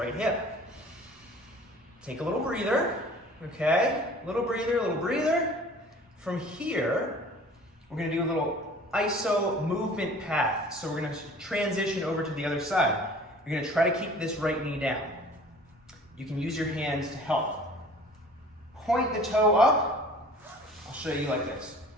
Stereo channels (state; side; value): normal; both; correlation 0.47